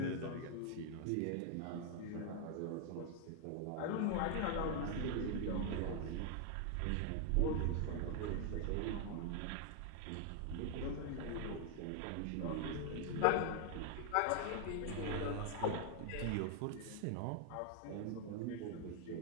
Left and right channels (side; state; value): both; different; correlation 0.00